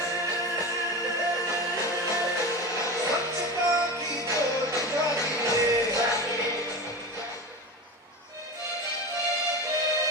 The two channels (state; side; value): normal; both; correlation 0.26